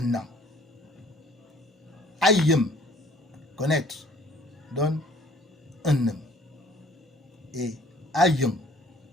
an. Ayem, connaître, donne un homme. Et Ayong,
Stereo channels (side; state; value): both; normal; correlation 0.55